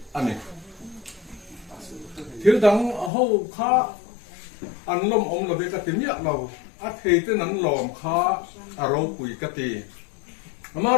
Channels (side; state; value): right; drops out; at 3.1 s